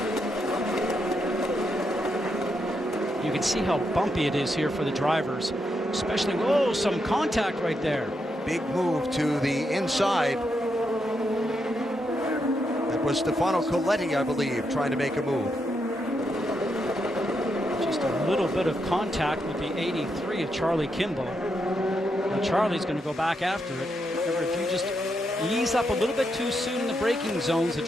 You can see how bumpy it is here for the drivers, especially, whoa, some contact right there. Big move to the inside. That was Stefano Coletti, I believe, trying to make a move. Just a little bit of contact with the 83 of Charlie Kimball. Now Charlie's going to go back after it. Remember, if you just ease up a little bit too soon in the braking zones, the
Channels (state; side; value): normal; both; correlation 0.82